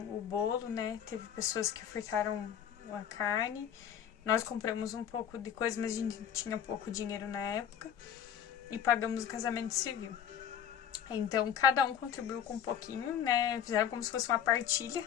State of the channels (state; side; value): quieter; right; 9.0 dB